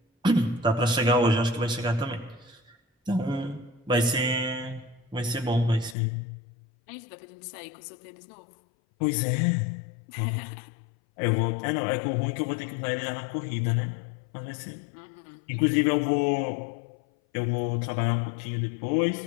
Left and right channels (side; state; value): right; drops out; at 6.0 s